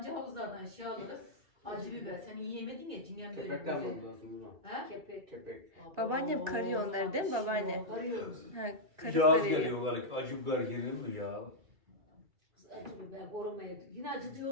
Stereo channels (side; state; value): left; late; 2.3 ms